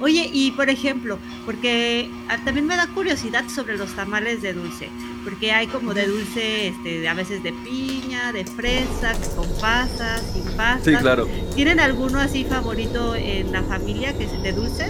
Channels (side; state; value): both; identical; correlation 1.00